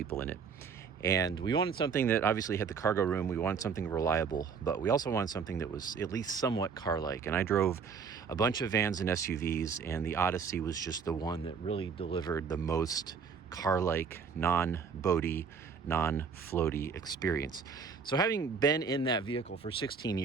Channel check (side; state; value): left; quieter; 6.0 dB